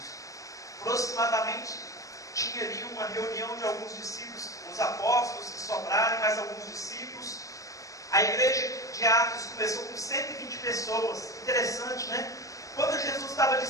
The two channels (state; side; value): late; right; 0.16 ms